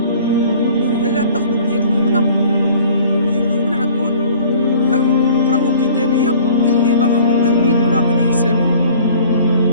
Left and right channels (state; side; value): inverted; both; correlation -0.50